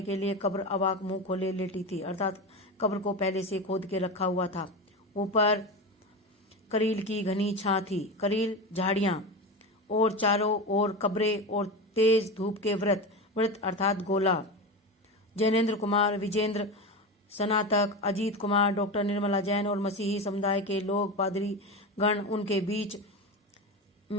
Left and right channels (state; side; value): normal; both; correlation 0.22